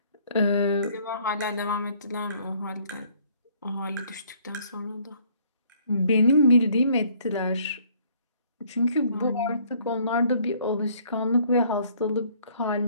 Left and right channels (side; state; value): both; inverted; correlation -0.61